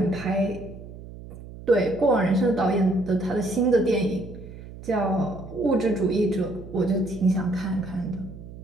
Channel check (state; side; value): noise; right; hum, 15 dB below the sound